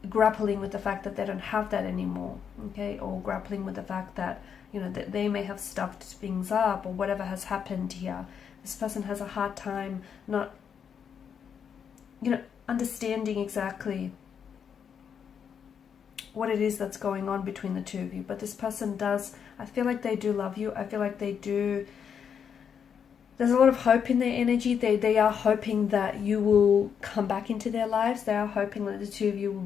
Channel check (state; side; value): quieter; right; 7.4 dB